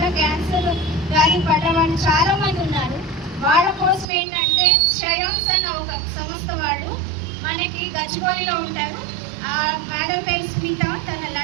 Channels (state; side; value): drops out; left; at 4.0 s